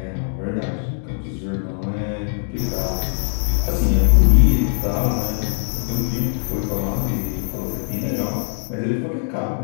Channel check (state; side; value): silent; right; digital silence